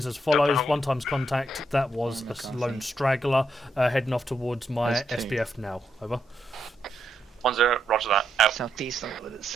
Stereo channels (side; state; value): both; normal; correlation 0.79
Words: as follows. 1 times contact, that was a lone straggler, heading off towards my There's 2. SBF now. Over. 1-0, Roger that, out. Southeast,